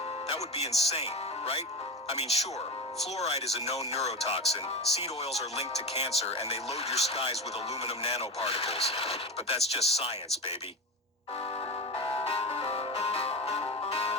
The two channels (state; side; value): normal; both; correlation 0.23